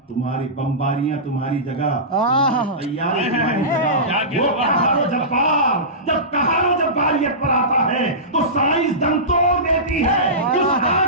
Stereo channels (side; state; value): both; normal; correlation -0.20